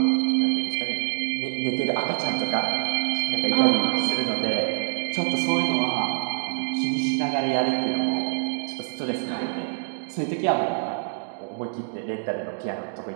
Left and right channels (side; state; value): left; silent; digital silence